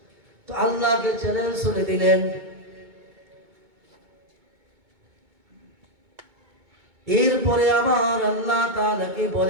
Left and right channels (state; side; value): late; left; 2.2 ms